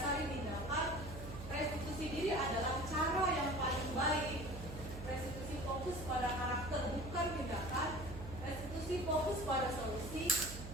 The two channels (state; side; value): noise; right; hum, 10 dB below the sound